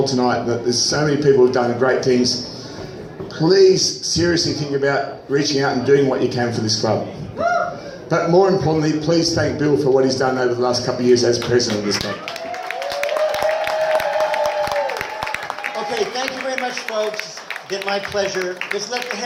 tonight, there's so many people who've done great things. Please seriously think about reaching out and doing what you can for this club. But more importantly, please thank Bill for what he's done over the last couple of years as president of this club. Okay, thank you very much, folks. It's been my pleasure. Just let the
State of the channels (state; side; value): identical; both; correlation 1.00